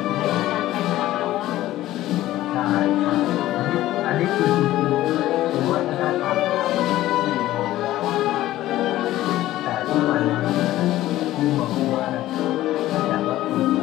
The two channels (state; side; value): quieter; right; 15.0 dB